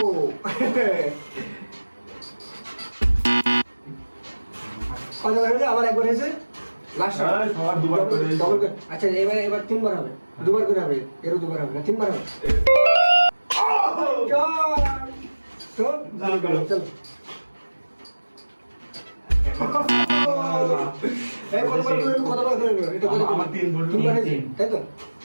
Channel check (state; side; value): inverted; both; correlation -1.00